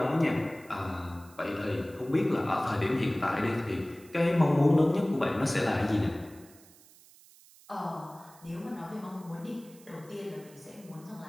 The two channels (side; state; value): right; noise; hiss, 24 dB below the sound